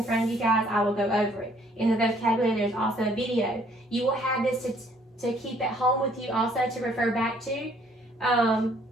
front of you guys, I will go over it. In the vocabulary, there's also a video. You will have this to keep at home with you, also to refer back to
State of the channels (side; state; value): both; normal; correlation 0.62